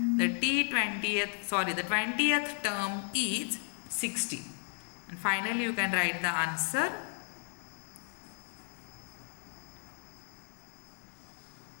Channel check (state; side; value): silent; right; 55 dB below the other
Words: 20th term is 60. And finally you can write the answer.